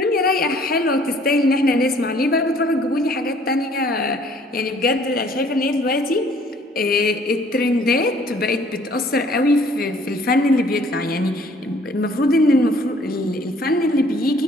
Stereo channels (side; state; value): both; normal; correlation 0.58